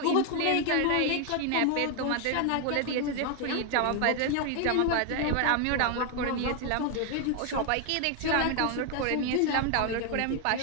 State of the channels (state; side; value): different; both; correlation 0.01